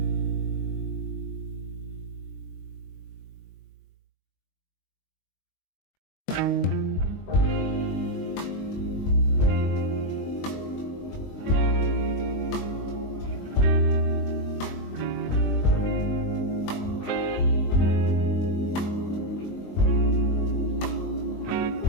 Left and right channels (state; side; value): late; right; 21 ms